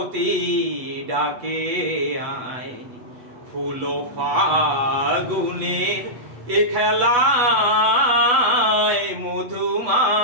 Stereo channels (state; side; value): late; left; 8.2 ms